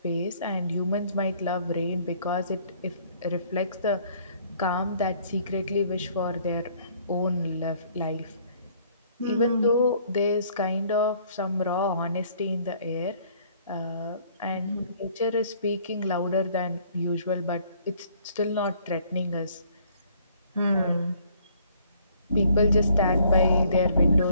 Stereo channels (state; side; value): inverted; both; correlation -0.61